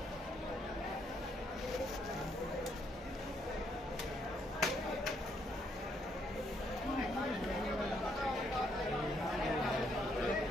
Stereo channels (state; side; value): normal; both; correlation 0.72